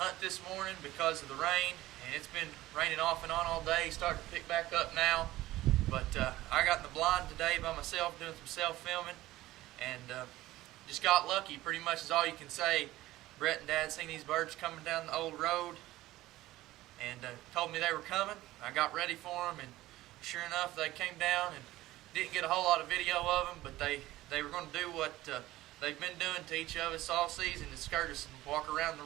this morning because of the rain, and it's been raining off and on all day, starting to pick back up now. But I got in the blind today by myself doing some self-filming, and just got lucky, pretty much is all you can say. Brett and Dad seen these birds coming down the old road and told me they were coming. I got ready for them, and sure enough, they came down, and didn't get a whole lot of video of them, but they were going to do what they've been doing to each of us all season, to skirt us and walk around the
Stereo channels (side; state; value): left; quieter; 16.5 dB